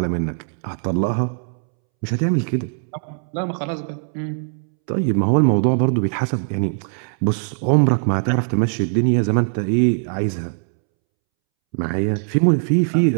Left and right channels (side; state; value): left; silent; 65 dB below the other